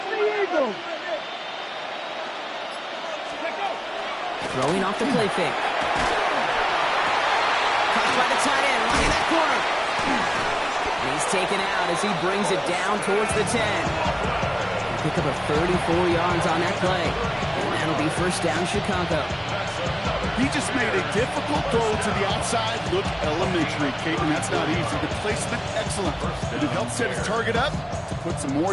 Eagles. Throwing off the play fake. Caught by the tight end, running that corner. And he's taken out as he brings it down towards the 10. Pick up of 34 yards on that play. And that'll be first down Chicago. He just made a difficult throw to the outside. Look elementary, Kate, and that's not easy. The placement, excellent. And it helped set his target up to put some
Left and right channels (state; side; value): identical; both; correlation 1.00